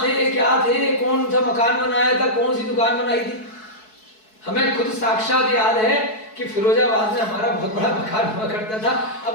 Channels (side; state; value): right; late; 4.6 ms